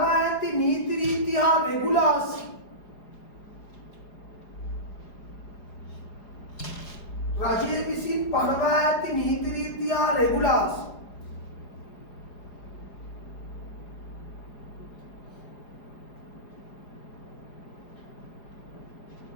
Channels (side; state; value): right; late; 4.9 ms